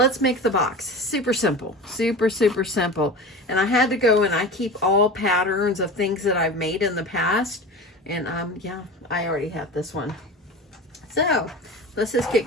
make the box. Super simple, super, super simple. And I had to go, and I keep all patterns of things that I've made in the past. And yeah, I already have this one. So let's just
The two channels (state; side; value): normal; both; correlation 0.32